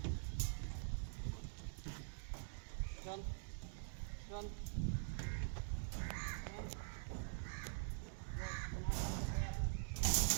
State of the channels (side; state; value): left; silent; digital silence